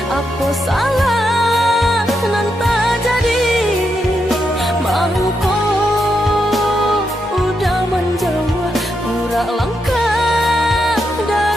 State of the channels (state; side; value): normal; both; correlation 0.83